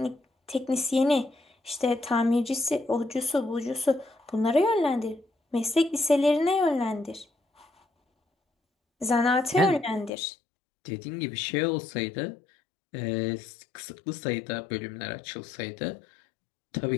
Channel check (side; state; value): right; drops out; at 10.1 s